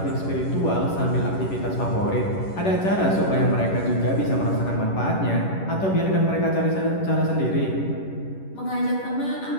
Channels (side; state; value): right; late; 11 ms